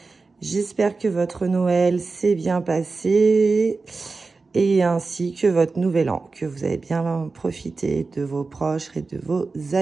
J'espère que votre Noël s'est bien passé et ainsi que votre nouvel an, que vous avez bien profité de vos proches et de vos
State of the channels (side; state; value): left; quieter; 4.0 dB